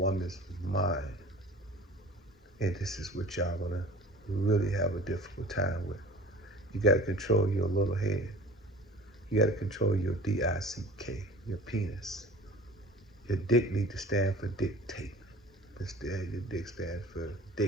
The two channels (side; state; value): both; normal; correlation 0.43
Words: mind, and this is what y'all gonna really have a difficult time with. You gotta control your little head. You gotta control your DICK, your penis. Your dick need to stand for dictate. Instead, your dick stands for